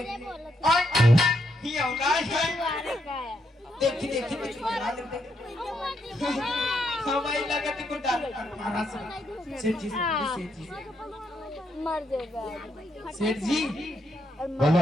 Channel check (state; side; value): normal; both; correlation 0.78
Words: और ये नहीं है, देखी देखी देखी डरा लेते। हमारी लगत को डाल मारा सेठ जी सेठ जी मर जाएगा। सेठ जी बोलो